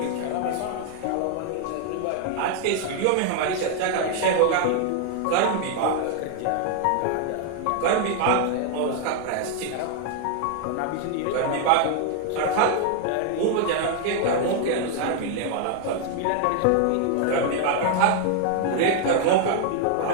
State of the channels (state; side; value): different; both; correlation 0.00